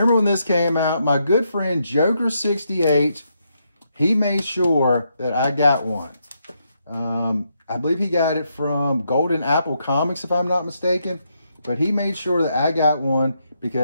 when this came out? My good friend Joker68, he made sure that I got one. I believe he got it from Golden Apple Comics, if I'm not mistaken. But he made sure that I got one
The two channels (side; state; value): both; inverted; correlation -0.79